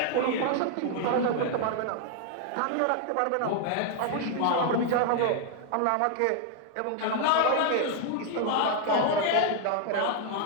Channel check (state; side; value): different; both; correlation 0.00